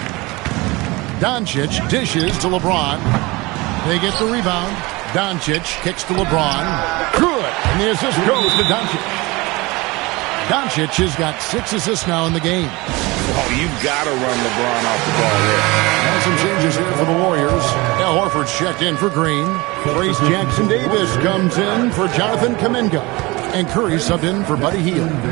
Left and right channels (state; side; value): quieter; left; 23.1 dB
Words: Doncic dishes to LeBron. They get the rebound. Doncic kicks to LeBron. Good. And the assist goes to Doncic. Doncic has got 6 assists now in the game. Oh, you've got to run LeBron off the ball there. And some changes here for the Warriors. Al Horford's checked in for Green. Trace Jackson-Davis comes in for Jonathan Kuminga. And Curry subbed in for Buddy Hield.